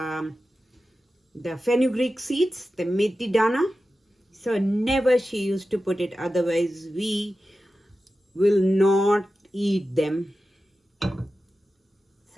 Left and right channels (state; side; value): normal; both; correlation 0.93